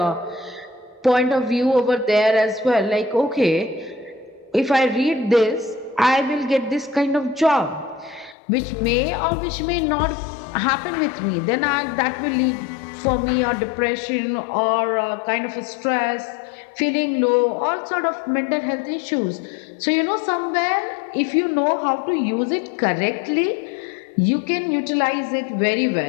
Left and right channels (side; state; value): right; drops out; at 8.3 s